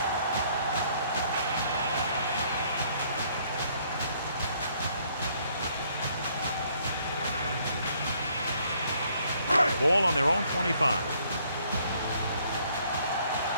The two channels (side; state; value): both; inverted; correlation -0.66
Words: Ball on their own 25.